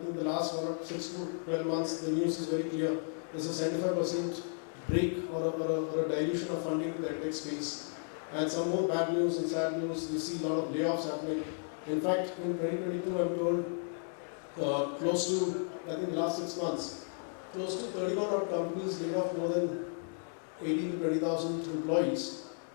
think the last 6 to 12 months, the news is very clear. There's a 75% break or a dilution of funding to the EdTech space. And some more bad news and sad news. We see a lot of layoffs happening. In fact, in 2022, I'm told close to, I think the last 6 months, close to 31 odd companies laid off more than 18 to 20,000 employees.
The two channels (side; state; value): right; silent; 55 dB below the other